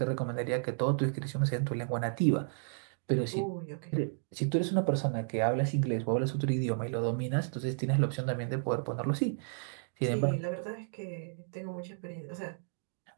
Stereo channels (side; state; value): left; silent; digital silence